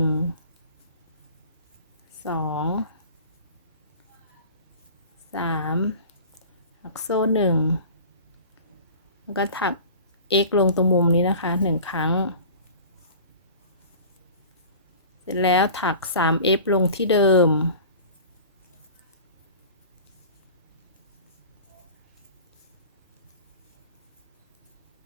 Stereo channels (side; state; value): both; inverted; correlation -0.40